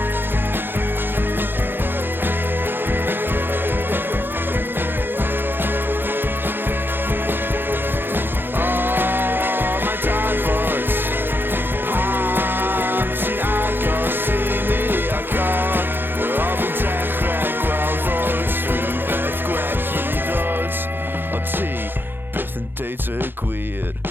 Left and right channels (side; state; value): left; late; 0.10 ms